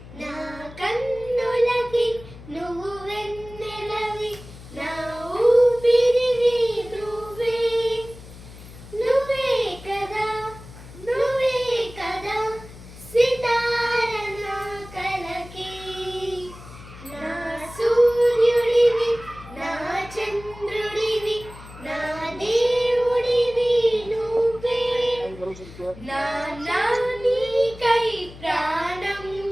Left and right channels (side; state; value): left; noise; hum, 17 dB below the sound